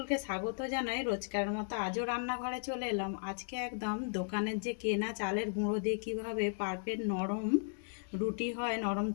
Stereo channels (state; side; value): silent; right; digital silence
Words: স্বাগত জানাই। রোজকার মতো আজও রান্নাঘরে চলে এলাম। আজকে একদম দোকানের যে কেনা চালের গুঁড়ো দিয়ে কীভাবে পারফেক্ট নরম রুটি হয়, নরম